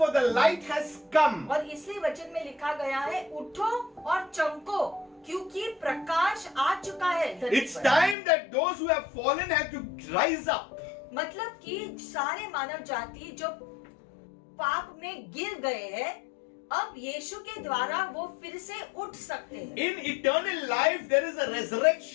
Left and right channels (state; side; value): drops out; right; at 8.2 s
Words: the light has come." और इसलिए वचन में लिखा गया है, उठो और चमको क्योंकि प्रकाश आ चुका है धरती It's पर। time that those who have fallen have to rise up. मतलब कि सारे मानव जाति जो पाप में गिर गए हैं अब यीशु के द्वारा वो फिर से उठ सकते हैं। In eternal life, there is a